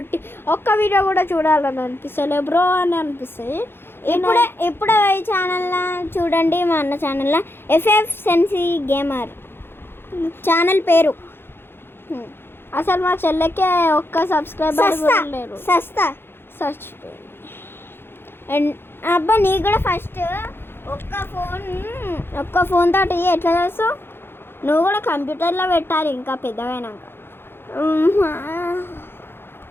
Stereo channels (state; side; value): late; right; 0.11 ms